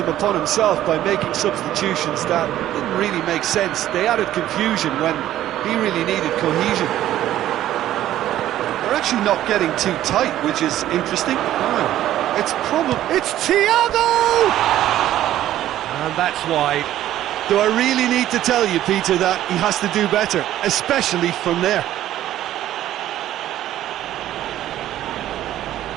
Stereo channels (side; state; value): left; quieter; 13.0 dB